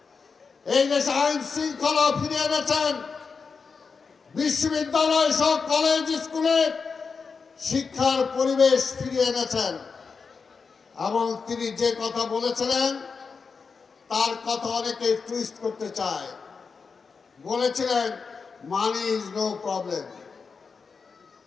এই দেশে আইন শৃঙ্খলা ফিরিয়ে এনেছেন, বিশ্ববিদ্যালয় সহ কলেজ স্কুলে শিক্ষার পরিবেশ ফিরিয়ে এনেছেন। এবং তিনি যে কথা বলেছিলেন তার কথা অনেকে টুইস্ট করতে চায়। বলেছিলেন মানি ইজ নো প্রবলেম,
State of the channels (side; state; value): right; quieter; 5.2 dB